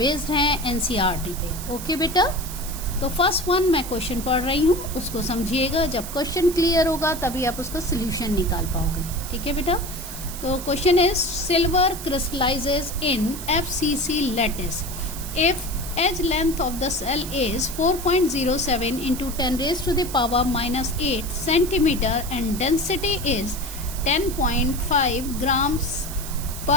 हैं एनसीईआरटी पे। ओके बेटा, तो फर्स्ट वन मैं क्वेश्चन पढ़ रही हूँ, उसको समझिएगा। जब क्वेश्चन क्लियर होगा तभी आप उसका सोल्यूशन निकाल पाओगे। ठीक है बेटा, तो question is silver crystallises in FCC lattice if edge length of the cell is 4.07 into 10 raised to the power minus 8 centimeter and density is 10.5 grams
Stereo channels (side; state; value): right; noise; hiss, 10 dB below the sound